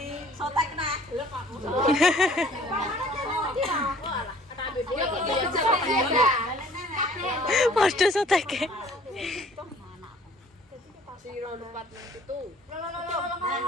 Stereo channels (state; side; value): normal; both; correlation 0.53